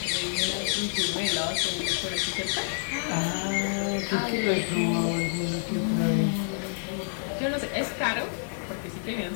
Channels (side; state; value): right; silent; 59 dB below the other